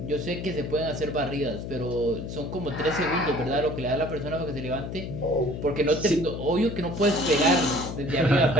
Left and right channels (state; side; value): noise; left; hum, 7 dB below the sound